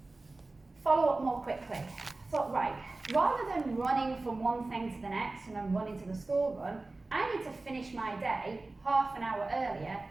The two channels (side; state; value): left; quieter; 3.2 dB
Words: Follow up more quickly. Thought, right, rather than running from one thing to the next and then running to the school run, I need to finish my day half an hour earlier